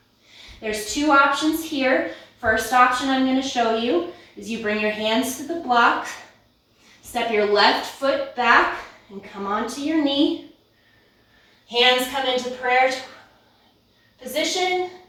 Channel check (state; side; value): identical; both; correlation 1.00